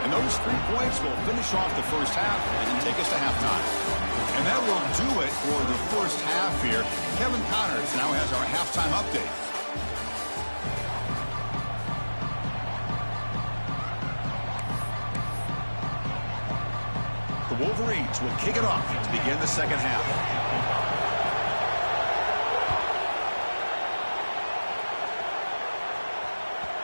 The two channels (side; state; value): both; inverted; correlation -1.00